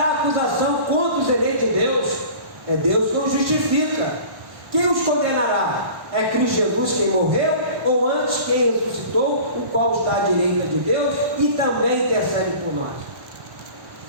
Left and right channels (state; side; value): late; left; 1.1 ms